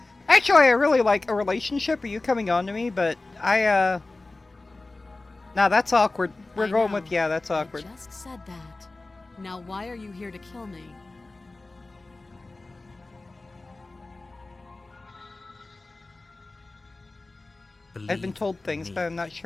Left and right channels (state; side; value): quieter; right; 3.2 dB